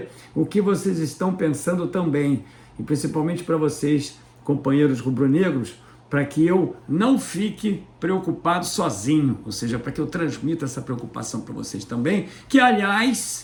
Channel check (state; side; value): identical; both; correlation 1.00